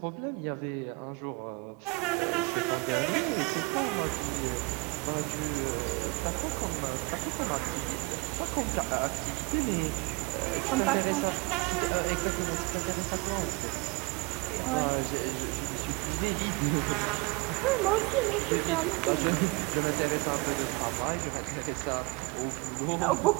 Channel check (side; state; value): left; quieter; 25.2 dB